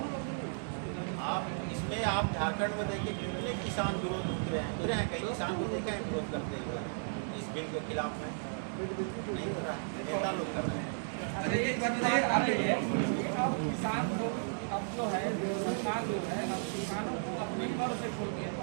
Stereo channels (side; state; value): left; silent; 55 dB below the other